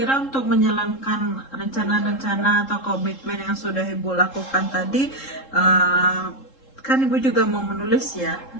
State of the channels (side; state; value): right; late; 3.7 ms